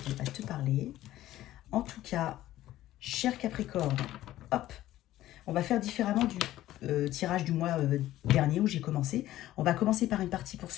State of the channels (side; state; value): right; quieter; 14.4 dB